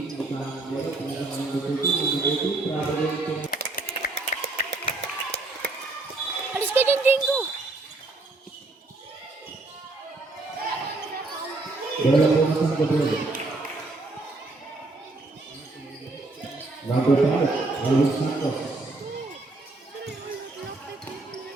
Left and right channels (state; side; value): quieter; left; 3.2 dB